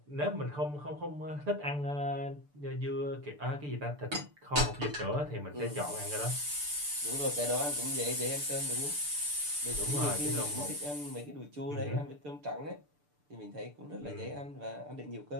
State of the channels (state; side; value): late; left; 6.8 ms